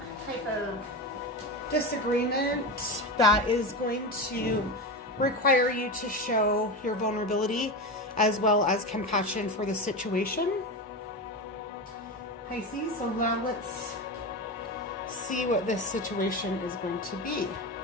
type of disagreement that is going to require you to show your vulnerability as well as compassion for the situation. Pisces, so now let's see what this situation is going to be.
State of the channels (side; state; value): both; normal; correlation 0.21